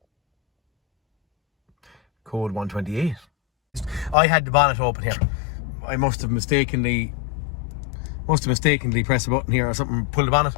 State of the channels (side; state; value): right; drops out; at 4.2 s